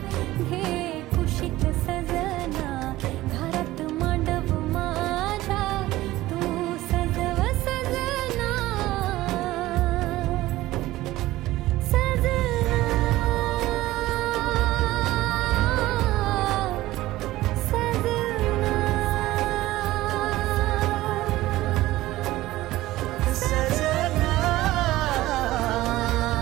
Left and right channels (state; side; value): quieter; left; 16.8 dB